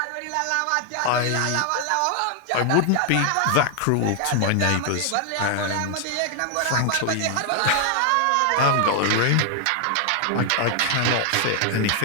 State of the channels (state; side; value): different; both; correlation 0.00